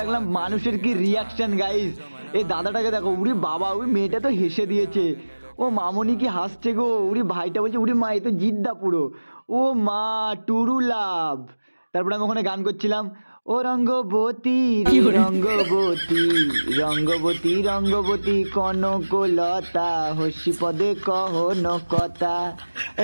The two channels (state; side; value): inverted; both; correlation -1.00